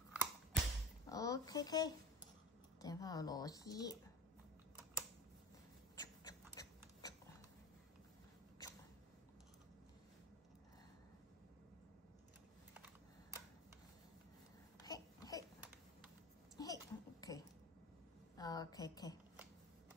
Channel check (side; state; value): both; normal; correlation 0.31